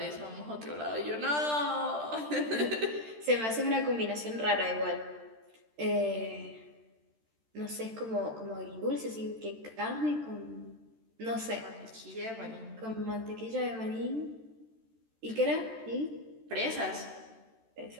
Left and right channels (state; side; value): late; left; 13 ms